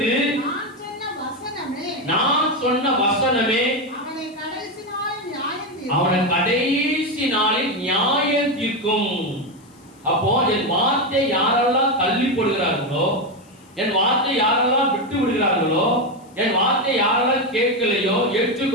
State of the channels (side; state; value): left; noise; hiss, 30 dB below the sound